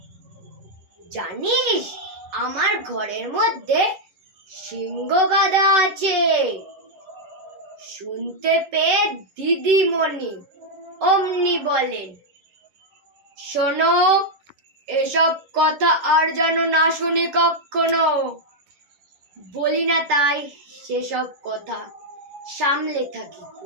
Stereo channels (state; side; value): late; left; 10 ms